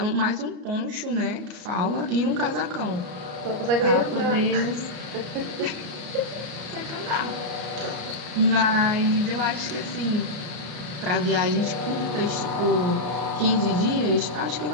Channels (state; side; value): late; left; 34 ms